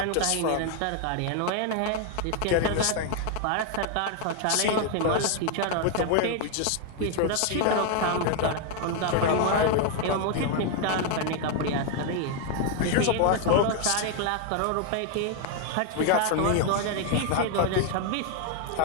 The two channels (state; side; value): different; both; correlation 0.00